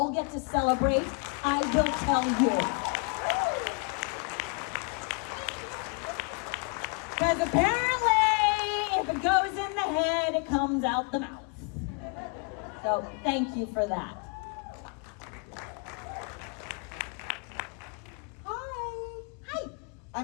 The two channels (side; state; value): right; quieter; 35.3 dB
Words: get to celebrate. I will tell you. Because apparently, if it goes in the head, it comes out the mouth. So thank you for that.